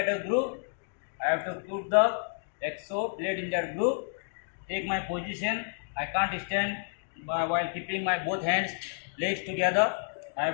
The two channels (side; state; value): right; silent; digital silence